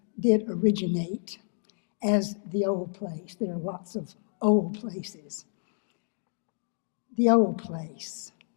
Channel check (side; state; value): right; silent; 58 dB below the other